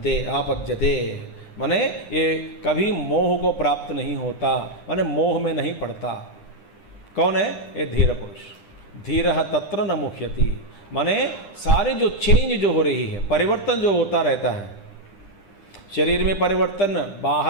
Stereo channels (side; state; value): right; late; 10 ms